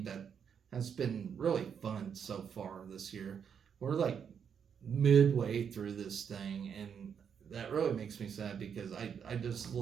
that has been really fun so far this year. We're like midway through this thing, and that really makes me sad, because I just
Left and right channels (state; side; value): quieter; left; 7.4 dB